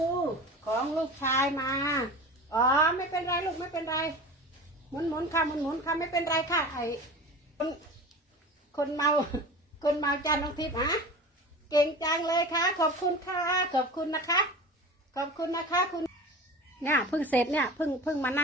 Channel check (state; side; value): normal; both; correlation 0.35